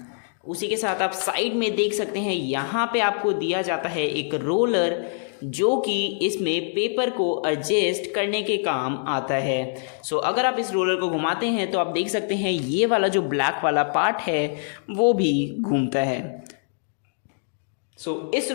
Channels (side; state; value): right; silent; digital silence